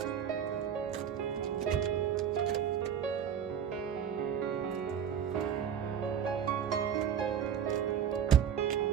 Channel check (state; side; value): quieter; left; 8.4 dB